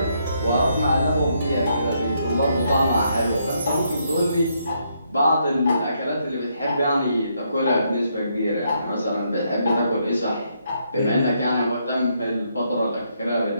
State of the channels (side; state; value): both; inverted; correlation -0.75